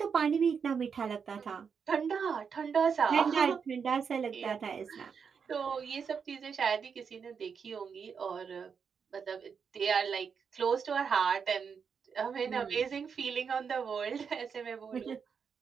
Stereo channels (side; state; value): left; quieter; 6.3 dB